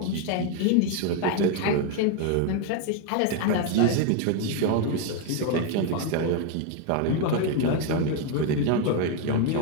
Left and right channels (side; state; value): both; different; correlation 0.01